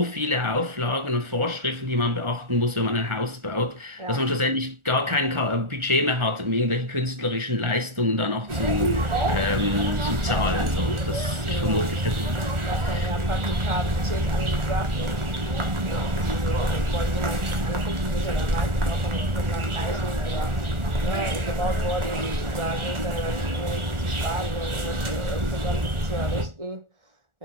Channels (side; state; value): left; late; 1.4 ms